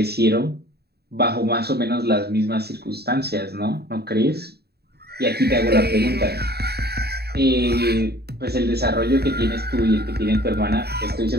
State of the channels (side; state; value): left; late; 0.47 ms